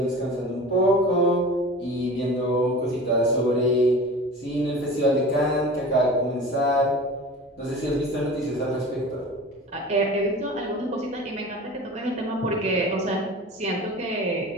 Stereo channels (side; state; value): both; normal; correlation 0.37